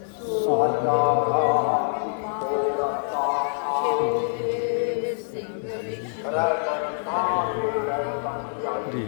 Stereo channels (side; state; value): right; silent; digital silence